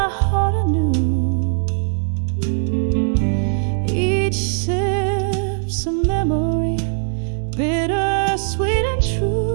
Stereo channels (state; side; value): silent; left; digital silence